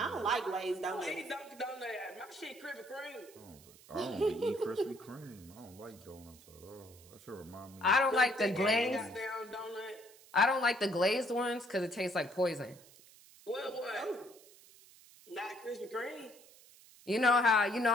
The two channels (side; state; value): right; noise; hiss, 23 dB below the sound